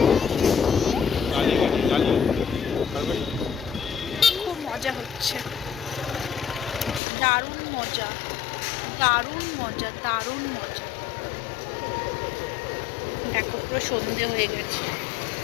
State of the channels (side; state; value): right; drops out; at 7.0 s